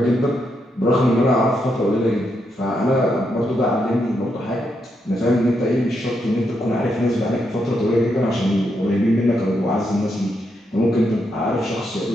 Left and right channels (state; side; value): normal; both; correlation 0.81